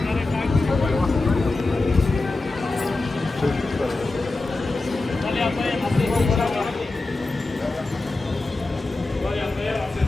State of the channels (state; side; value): quieter; right; 3.2 dB